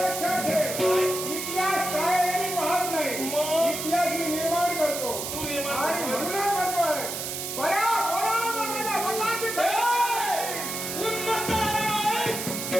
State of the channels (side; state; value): right; noise; hiss, 5 dB below the sound